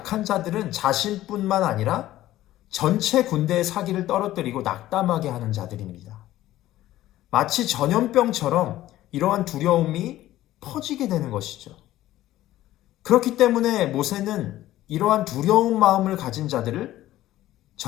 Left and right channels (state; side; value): quieter; right; 14.7 dB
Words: 자들은 자신뿐만 아니라 전체 군대의 사기를 떨어뜨리고 낙담하게 하는 자들입니다. 마치 전염병처럼 이러한 두려움이 퍼지게 되는 것이죠. 그렇기 때문에 모세는 이러한 두려운 마음을 가진 자들을